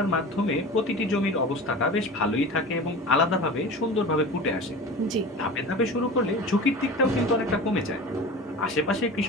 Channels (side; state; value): both; normal; correlation 0.34